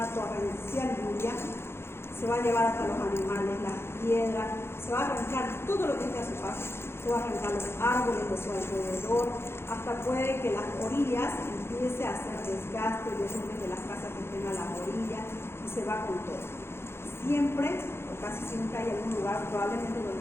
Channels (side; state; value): right; late; 0.12 ms